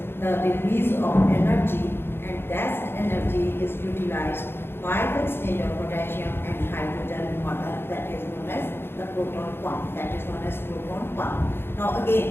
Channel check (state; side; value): late; right; 0.11 ms